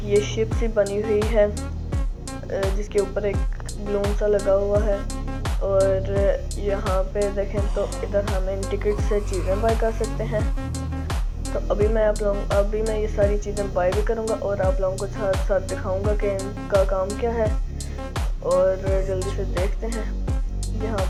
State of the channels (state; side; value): identical; both; correlation 1.00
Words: ये शिप सी बनी हुई है जिसके ऊपर एक बलून सा लगा हुआ है, और यहाँ पे देखें तो इधर हम इन टिकट से चीज़ें बाय कर सकते हैं। तो अभी मैं ये सारी चीज़ें बाय भी करूँगा और आप लोगों को साथ साथ दिखाऊंगा कि इनका काम क्या है। और जल्दी से देखते हैं यहाँ